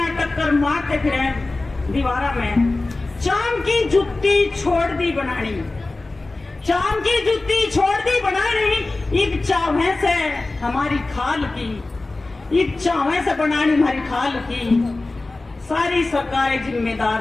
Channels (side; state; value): right; quieter; 3.2 dB